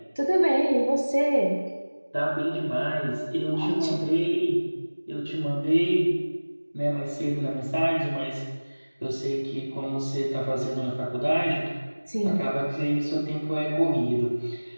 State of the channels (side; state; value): both; inverted; correlation -1.00